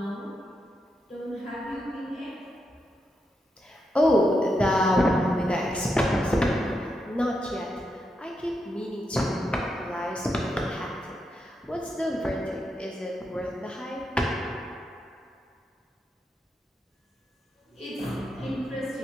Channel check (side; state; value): both; normal; correlation 0.84